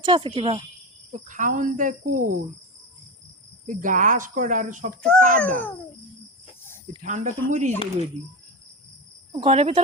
আছে কিবা। তো, খাওন দেয় কই? এই ঘাস করা আর সব তো কাদা, এই ঠান্ডা তো মরি যাবে ওইদি। ঘরের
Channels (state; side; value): normal; both; correlation 0.20